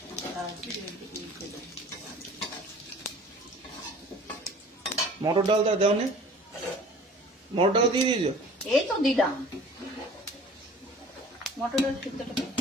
মিশিয়ে দেবো। মটর ডালটা দেও নে, মটর ডাল দিয়ে দিয়েছো? এই তো দিলাম মটরের সিদ্ধটা করতে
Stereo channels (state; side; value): normal; both; correlation 0.46